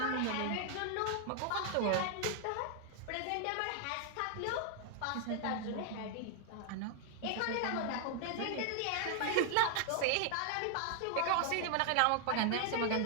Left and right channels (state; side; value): different; both; correlation 0.00